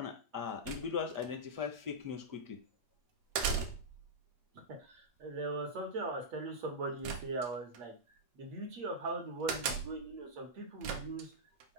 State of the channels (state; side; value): late; left; 8.5 ms